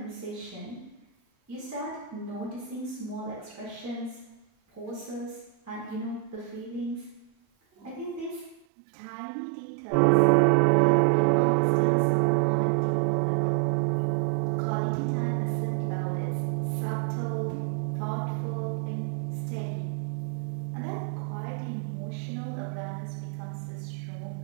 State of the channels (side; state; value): left; drops out; at 8.7 s